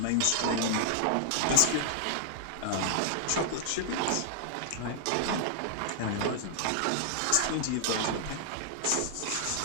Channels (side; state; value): both; different; correlation 0.00